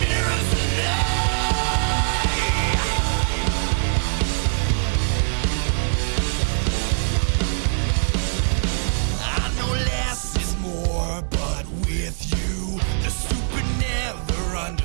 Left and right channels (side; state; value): left; silent; digital silence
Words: tonight. I know less is more, but with you, the stupid never